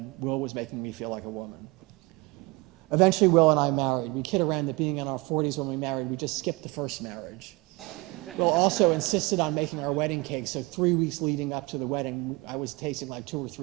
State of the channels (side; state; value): left; quieter; 24.3 dB